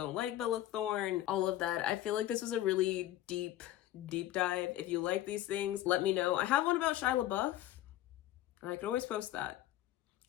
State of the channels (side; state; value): right; quieter; 13.9 dB